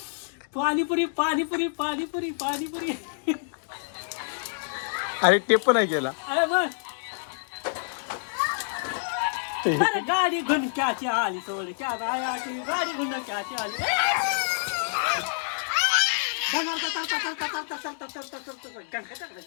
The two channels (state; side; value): silent; right; digital silence